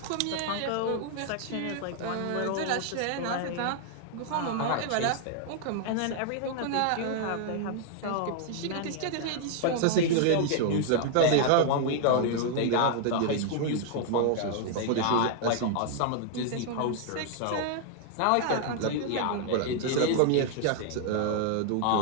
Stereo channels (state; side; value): different; both; correlation 0.00